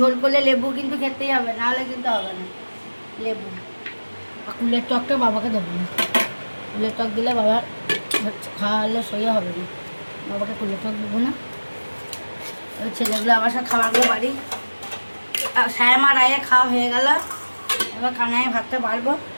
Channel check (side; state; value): both; inverted; correlation -1.00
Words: করলে লেবু কিন্তু খেতেই হবে, নাহলে কিন্তু হবে না লেবু। আর কুলের টকটা বাবাকে দেবো না, কুলের টক দিলে বাবার খাওয়ালে সইয়া হবে না, বাবাকে কুলের টক দেবো না। ওই ছেলেগুলো আবার সব খাবারগুলো বাড়ি শ্যামা রায়ে খাওয়া হয়ে গেল। এবার কানায় ভাতটা বাড়বো।